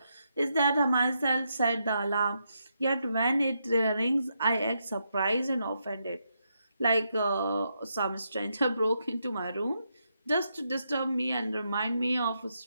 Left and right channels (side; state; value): both; inverted; correlation -0.81